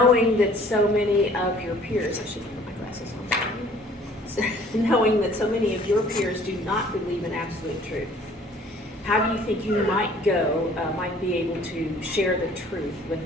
that so many of your peers, I should put my glasses on. Knowing that so many of your peers do not believe in absolute truth, how do you think you might be able to share the truth with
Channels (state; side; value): normal; both; correlation 0.54